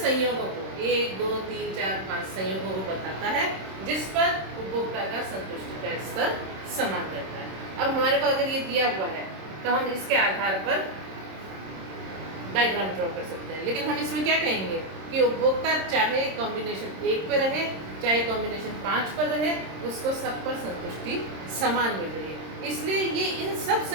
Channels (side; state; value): left; late; 26 ms